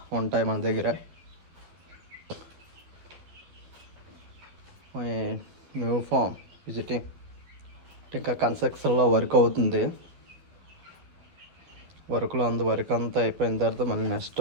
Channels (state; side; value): late; left; 12 ms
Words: ఉంటాయి మన దగ్గర. మై న్యూ ఫామ్ విజిటింగ్ ఇంకా కన్స్ట్రక్షన్లో వర్క్ అవుతుంది. వర్క్లో వర్క్ అంతా అయిపోయిన తర్వాత మళ్ళీ నెక్స్ట్